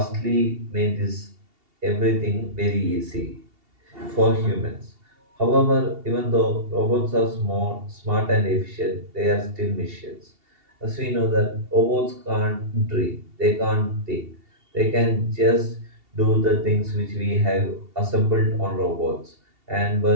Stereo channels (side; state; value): left; late; 2.7 ms